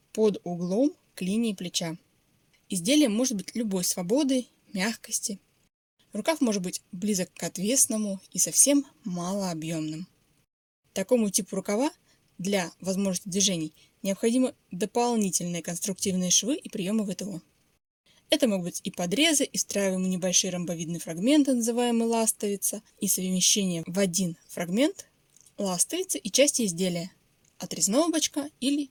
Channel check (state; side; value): identical; both; correlation 1.00